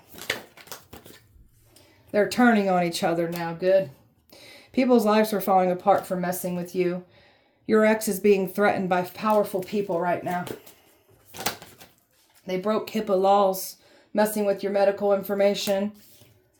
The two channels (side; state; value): both; identical; correlation 1.00